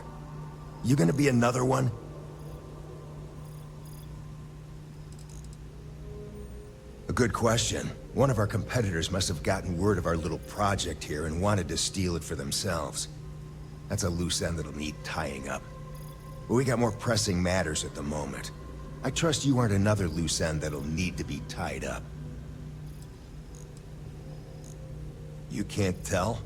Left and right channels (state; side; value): identical; both; correlation 1.00